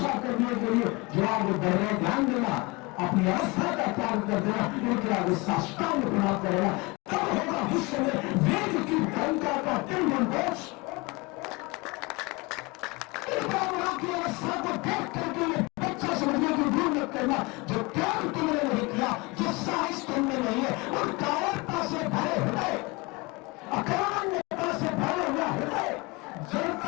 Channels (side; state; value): right; quieter; 25.6 dB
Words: करने के लिए जो आगे बढ़ रहे ध्यान देना, अपनी अवस्था का त्याग कर देना, इनके आगे साष्टांग प्रणाम करेगा, तब होगा विश्व में वेद की गंगा का तिलमंडोष। की अवस्था को देख करके ये बच्चा समझने की भूल मत करना। जो त्याग तुमने नहीं किया, जो साहस तुमने नहीं है, और कायरता से भरे हृदय, अकारणता से भरे हुआ हृदय,